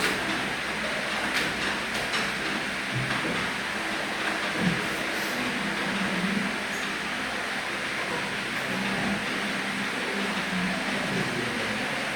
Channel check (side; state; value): both; identical; correlation 1.00